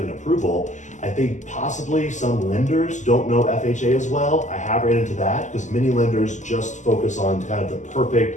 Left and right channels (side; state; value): right; late; 0.35 ms